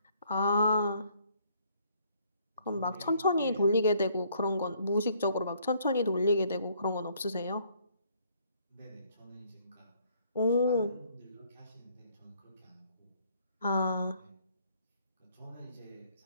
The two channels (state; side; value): inverted; both; correlation -0.64